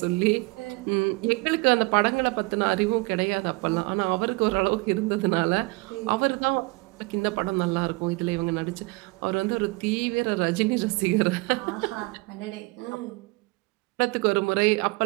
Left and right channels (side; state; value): left; quieter; 26.3 dB